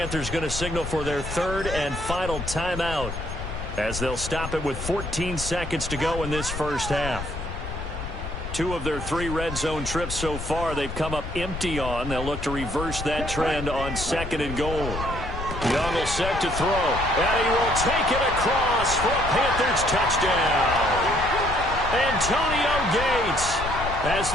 going to signal for their 3rd and final timeout as they'll stop it with 14 seconds to go in this first half. 2 of their 3 red zone trips so far they've come up empty on. They'll look to reverse that trend on 2nd and goal. Young will set to throw, and he will take it across for a Panthers touchdown. Antonio Gates, as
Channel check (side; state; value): left; noise; rumble, 7 dB below the sound